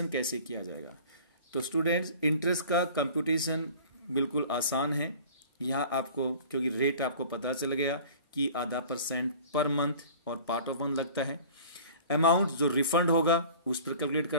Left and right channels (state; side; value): inverted; both; correlation -0.45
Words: कैसे किया जाएगा। तो स्टूडेंट्स, इंटरेस्ट का कंप्यूटेशन बिल्कुल आसान है। यहाँ आपको क्योंकि रेट आपको पता चल गया कि आधा % पर मंथ और पार्ट ऑफ मंथ लगता है। अमाउंट जो रिफंड होगा उस पर कैलकुलेट